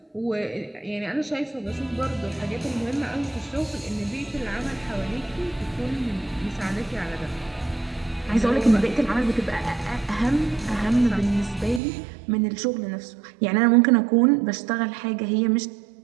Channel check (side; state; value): left; drops out; at 11.8 s